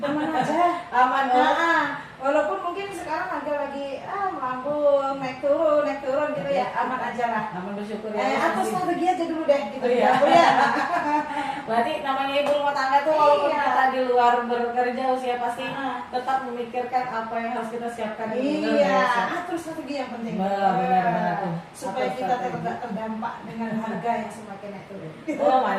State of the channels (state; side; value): identical; both; correlation 1.00